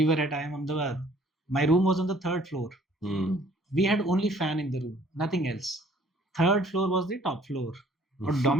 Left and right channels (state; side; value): normal; both; correlation 0.58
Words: were at IIM Ahmedabad. My room was on the 3rd floor. We had only fan in the room, nothing else. 3rd floor was the top floor. Or